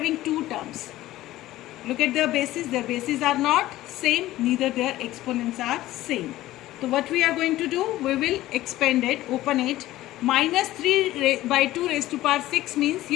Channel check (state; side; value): quieter; right; 15.8 dB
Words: two terms. Look at their bases are not same, neither their exponents are same. So what we are going to do, we will expand it, open it. Minus 3 by 2 raised to power 6 means